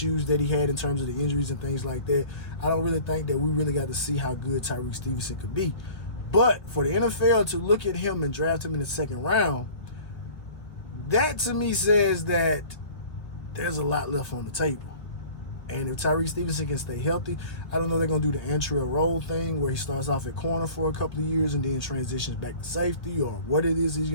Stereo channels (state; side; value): late; right; 1.6 ms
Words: that he had in terms of the injuries and things like that, I don't really think that we really got to see how good Tyrique Stevenson could be. But for the NFL to look at him and draft him in the 2nd round, that to me says that there's a lot left on the table. And if Tyrique Stevenson can stay healthy, I don't know if they're going to do the entry role thing where he starts off at corner for a couple of years and then transitions back to safety or what it is he's